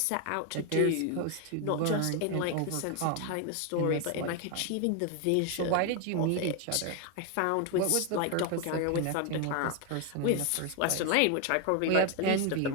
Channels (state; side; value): different; both; correlation 0.01